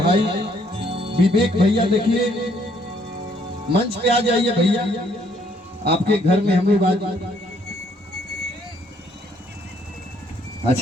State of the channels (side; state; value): both; normal; correlation 0.66